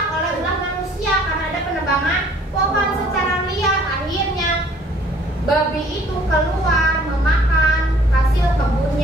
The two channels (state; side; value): normal; both; correlation 0.56